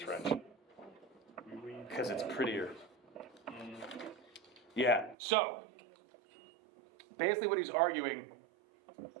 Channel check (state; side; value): drops out; left; at 5.2 s